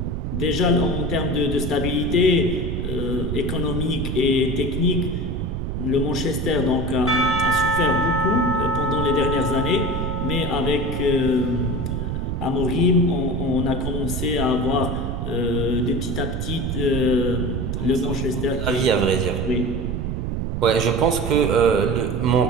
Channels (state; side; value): noise; right; rumble, 2 dB below the sound